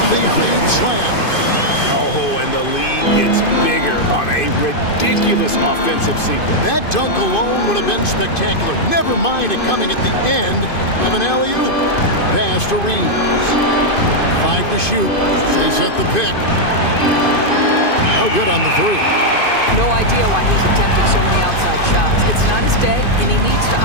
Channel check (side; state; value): right; late; 2.5 ms